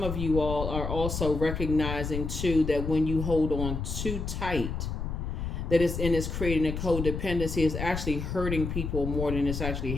of you all are also recognizing too that when you hold on too tight, that it's creating a codependency. It's actually hurting people more than it's actually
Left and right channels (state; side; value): noise; left; rumble, 4 dB below the sound